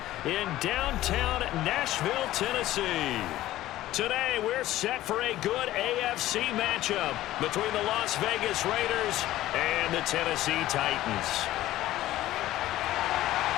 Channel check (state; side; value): quieter; right; 15.0 dB